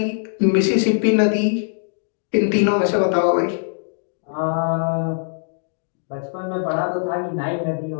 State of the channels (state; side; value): silent; right; digital silence